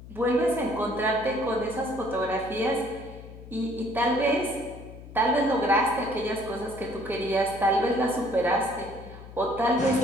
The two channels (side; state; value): left; noise; hum, 16 dB below the sound